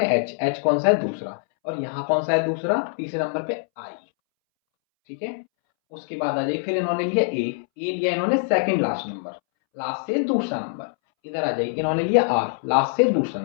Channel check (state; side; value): silent; right; 63 dB below the other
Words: एच, एच कौन सा है? दूसरा। और यहाँ कौन सा है दूसरा? तीसरे नंबर पे आई, ठीक है। उसके बाद आ जाइए, फिर इन्होंने लिया ए लिया इन्होंने सेकंड लास्ट नंबर, लास्ट से दूसरा नंबर। इधर आ जाइए, इन्होंने लिया आर, लास्ट से दूसरा